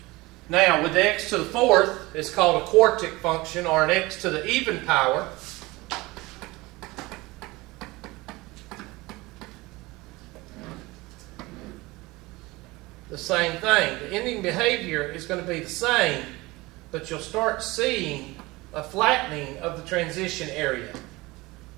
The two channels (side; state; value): left; quieter; 21.6 dB